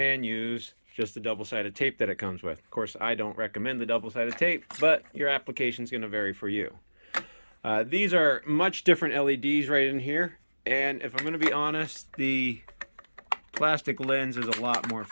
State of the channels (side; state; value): both; inverted; correlation -1.00